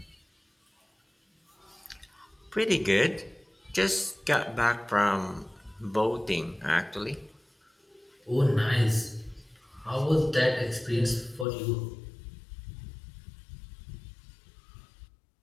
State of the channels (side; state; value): right; drops out; at 11.5 s